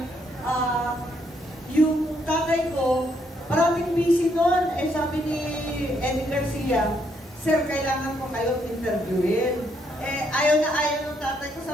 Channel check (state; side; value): normal; both; correlation 0.73